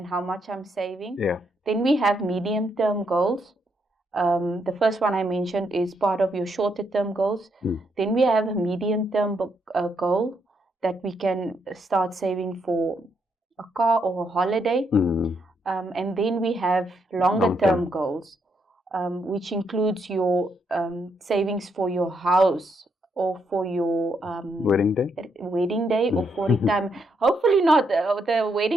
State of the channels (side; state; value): both; normal; correlation 0.77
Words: how much I'm saving. Then we have medium-term goals. The first one I mentioned is part of your shorter-term goals. Then we have a medium-term goal that we can start saving for a car or a holiday. And then we have longer-term goals, which includes your savings for your house, or for your wedding day, or for retirement. Hopefully not. The